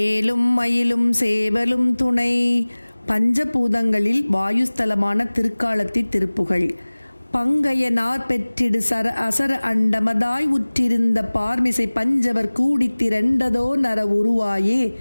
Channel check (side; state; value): both; inverted; correlation -1.00